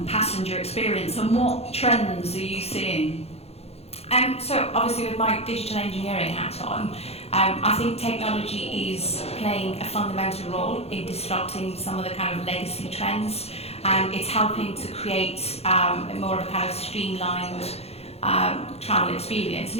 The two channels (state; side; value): late; right; 0.30 ms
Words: passenger experience, and what trends are you seeing? So obviously with my digital engineering hat on, I think technology is playing a fundamental role in disrupting some of the kind of legacy trends. It's helping to create more of a kind of streamlined travel experience,